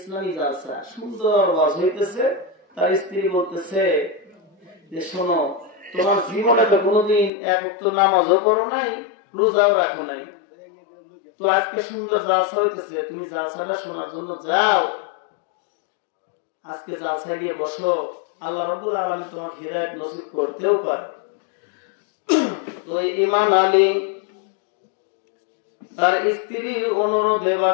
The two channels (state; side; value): drops out; right; at 7.3 s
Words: জালসা, সুন্দর ওয়াজ হইতেছে। তার স্ত্রী বলতেছে যে, শোনো, তোমার জীবনে তো কোনোদিন এক ওয়াক্ত নামাজও পড়ো নাই, রোজাও রাখো নাই, তো আজকে সুন্দর জালসা হইতেছে, তুমি জালসাটা শোনার জন্য যাও, আজকে জালসায় গিয়ে বসো, আল্লাহ রাব্বুল আলামিন তোমাকে হিদায়াত নসিব করতেও পারে। তো ঈমান আলী তার স্ত্রীর অনুরোধে